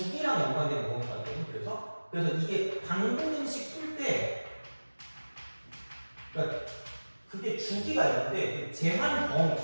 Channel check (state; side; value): inverted; both; correlation -1.00